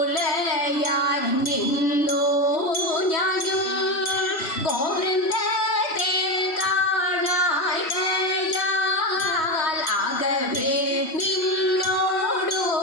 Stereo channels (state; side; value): late; right; 3.1 ms